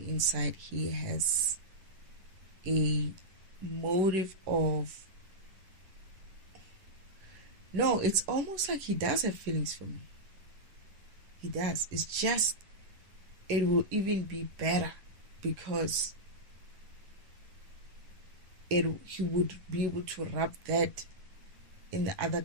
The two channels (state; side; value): late; left; 10 ms